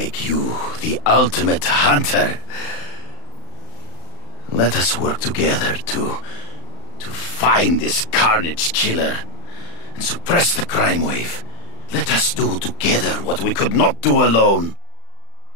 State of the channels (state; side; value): late; right; 35 ms